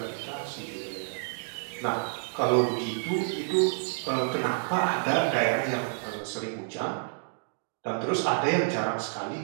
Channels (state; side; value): silent; left; digital silence